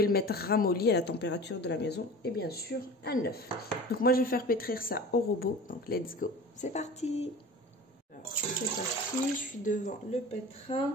le mettre ramolli à la température de la maison et bien sûr un œuf. Donc moi, je vais faire pétrir ça au robot. Donc let's go, c'est parti. C'est parti, je suis devant le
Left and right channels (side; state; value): both; normal; correlation 0.37